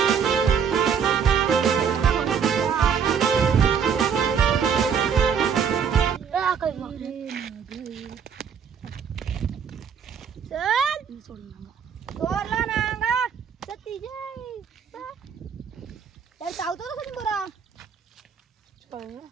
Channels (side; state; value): left; quieter; 7.1 dB